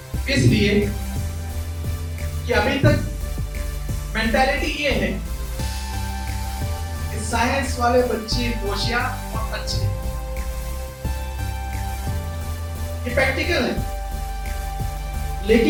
इसलिए कि अभी तक मेंटालिटी ये है कि साइंस वाले बच्चे होशियार और अच्छे, ये प्रैक्टिकल है,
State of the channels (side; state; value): both; identical; correlation 1.00